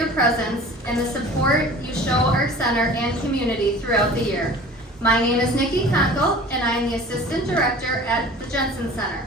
presence and the support you show our center and community throughout the year. My name is Nikki Conkle, and I am the Assistant Director at the Jensen Center.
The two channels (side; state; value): both; normal; correlation 0.43